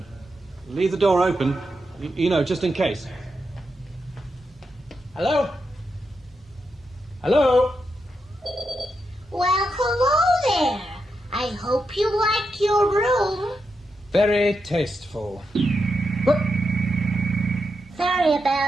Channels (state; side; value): normal; both; correlation 0.85